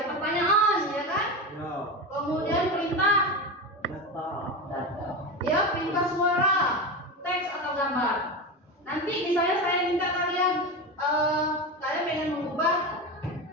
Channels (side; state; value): both; normal; correlation 0.21